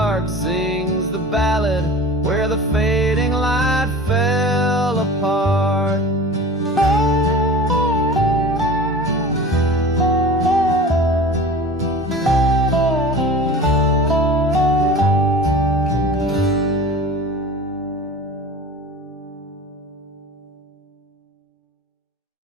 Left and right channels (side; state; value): both; normal; correlation 0.37